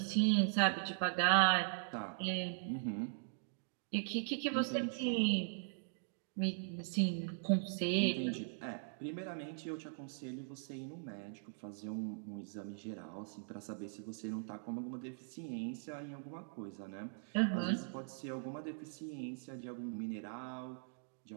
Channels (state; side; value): silent; left; digital silence